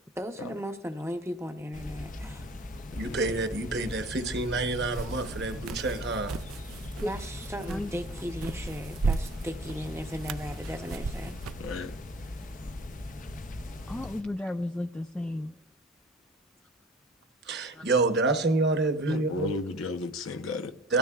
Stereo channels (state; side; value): normal; both; correlation 0.47